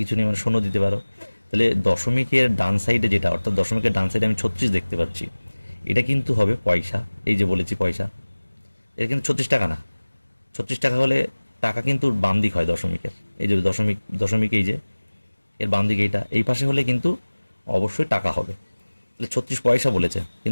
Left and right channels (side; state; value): both; inverted; correlation -1.00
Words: নেই, মানে শূন্য দিতে পারো। তাহলে দশমিকের ডান সাইডে যেটা, অর্থাৎ দশমিকের ডান সাইডে আমি 36 দেখতে পাচ্ছি, এটা কিন্তু হবে পয়সা। এই যে বলেছি পয়সা, এটা কিন্তু 36 টাকা না। 36 টাকা হলে টাকা কিন্তু বাম দিক হয় দশমিকের, এই যে দশমিক, দশমিক এই যে এর বাম দিকে এইটা, এই পাশে হলে কিন্তু অবশ্যই টাকা হবে। তাহলে 36 পয়সা বলেছে,